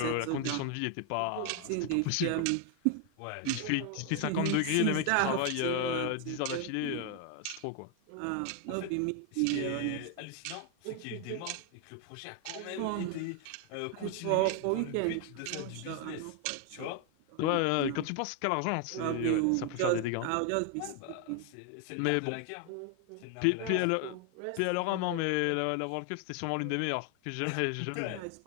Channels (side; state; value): both; different; correlation 0.00